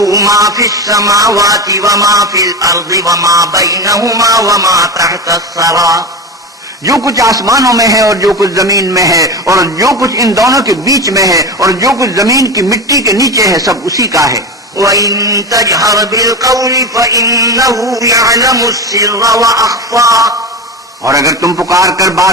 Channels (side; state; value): both; normal; correlation 0.23